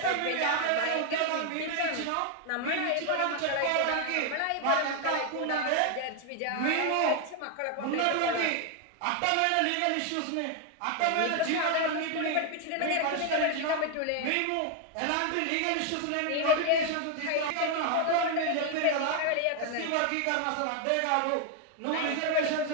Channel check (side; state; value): both; different; correlation 0.01